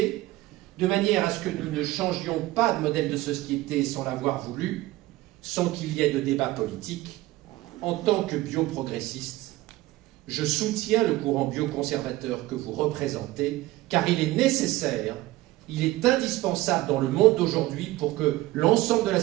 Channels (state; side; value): quieter; left; 17.6 dB